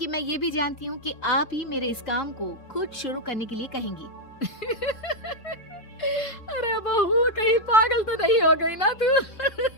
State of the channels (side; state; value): right; late; 3.7 ms